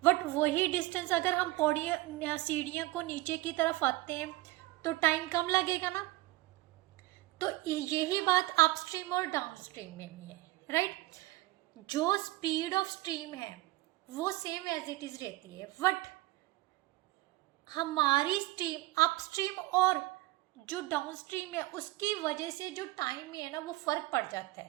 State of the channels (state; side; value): quieter; left; 18.8 dB